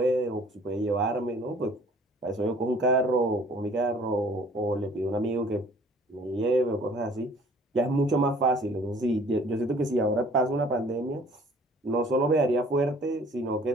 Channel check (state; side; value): normal; both; correlation 0.53